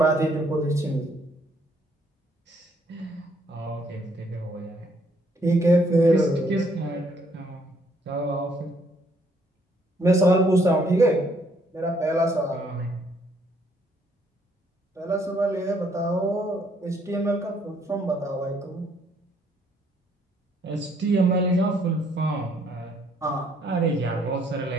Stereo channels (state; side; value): normal; both; correlation 0.67